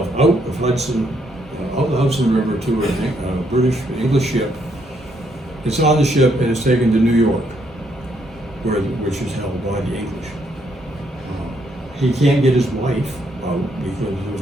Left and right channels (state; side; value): normal; both; correlation 0.73